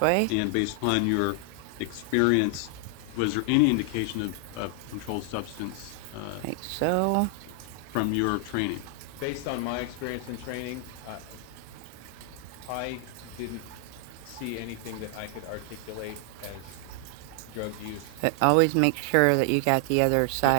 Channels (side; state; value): both; different; correlation 0.00